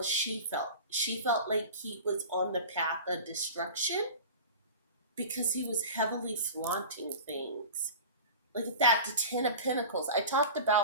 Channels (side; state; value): both; inverted; correlation -0.34